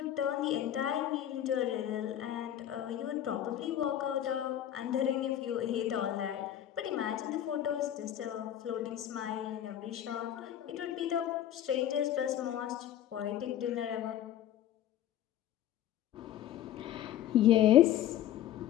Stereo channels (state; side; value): quieter; right; 11.5 dB